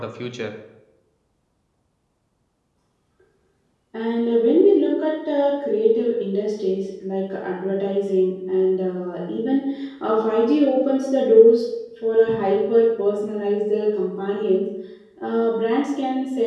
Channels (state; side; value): identical; both; correlation 1.00